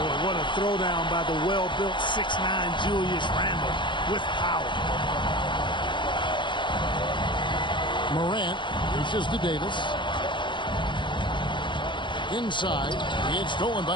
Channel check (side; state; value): right; late; 0.23 ms